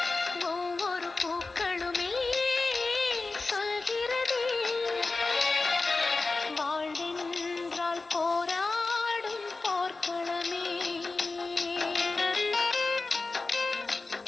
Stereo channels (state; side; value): quieter; right; 3.7 dB